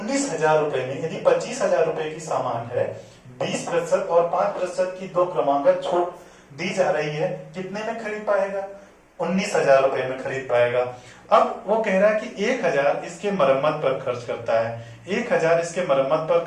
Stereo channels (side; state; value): both; identical; correlation 1.00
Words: रुपए में यदि 25,000 रुपए की सामान है, 20% और 5% की 2 क्रमांक छूट दी जा रही है, कितने में खरीद पाएगा, 19,000 रुपए में खरीद पाएगा। अब वो कह रहा है कि 1,000 इसके मरम्मत पर खर्च करता है, 1,000 इसके मरम्मत पर